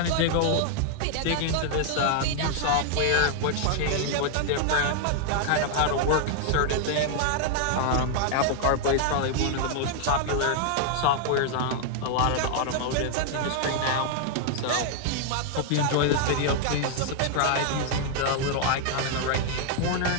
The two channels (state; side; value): different; both; correlation 0.00